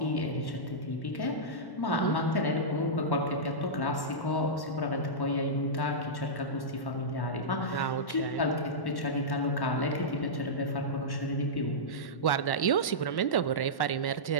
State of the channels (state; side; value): late; right; 1.1 ms